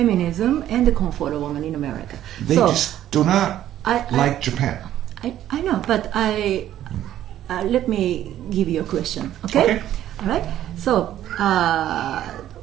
and the comfort woman in America. They just do not like Japan. I know, but let me give you a question. Okay. All right. So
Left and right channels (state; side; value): quieter; left; 12.2 dB